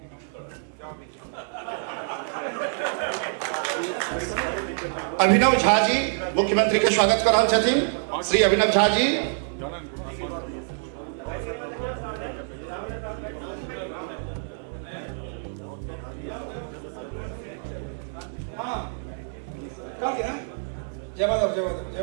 अभिनव झा जी मुख्यमंत्री के स्वागत कर रहल छथिन। श्री अभिनव झा जी।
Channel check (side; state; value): left; silent; digital silence